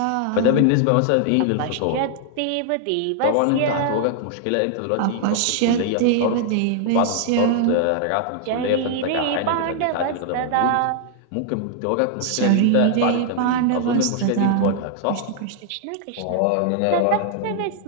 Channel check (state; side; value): different; both; correlation 0.00